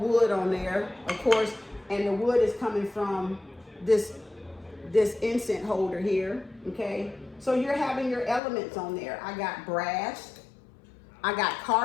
on there, of course, and the wood is coming from this incense holder here, okay? So you're having your elements on there. I got brass, I got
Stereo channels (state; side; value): drops out; right; at 8.4 s